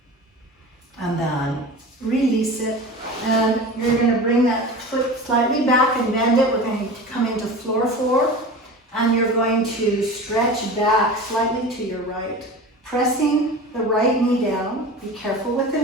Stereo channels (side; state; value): both; normal; correlation 0.34